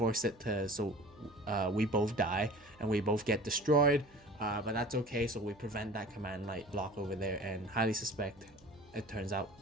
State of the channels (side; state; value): right; noise; hum, 27 dB below the sound